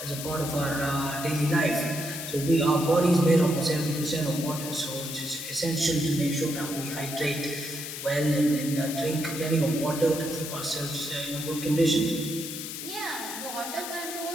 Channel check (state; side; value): noise; left; hiss, 7 dB below the sound